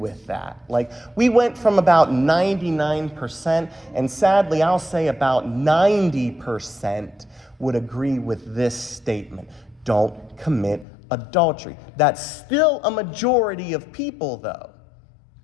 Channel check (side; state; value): right; drops out; at 10.9 s